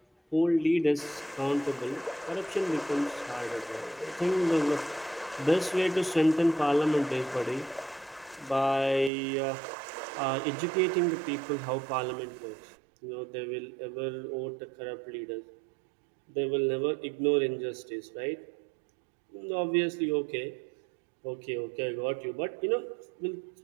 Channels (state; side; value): drops out; left; at 9.1 s